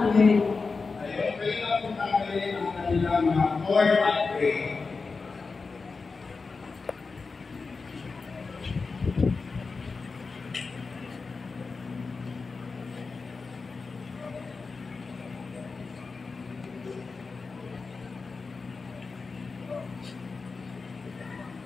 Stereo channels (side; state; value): right; quieter; 4.4 dB